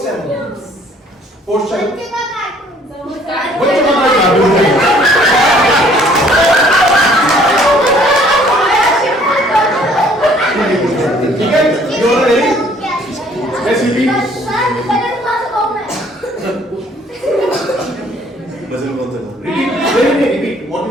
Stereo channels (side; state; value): both; normal; correlation 0.59